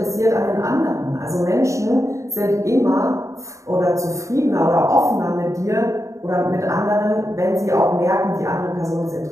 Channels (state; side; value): late; left; 0.15 ms